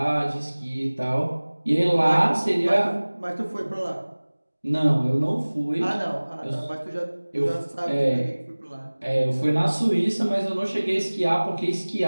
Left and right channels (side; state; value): both; inverted; correlation -1.00